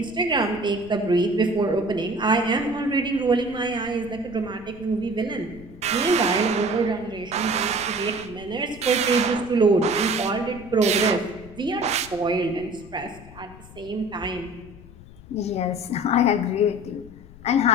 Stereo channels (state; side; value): noise; left; rumble, 19 dB below the sound